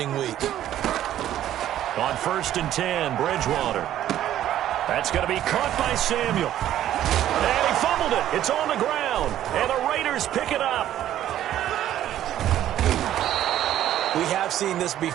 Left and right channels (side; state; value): left; quieter; 12.1 dB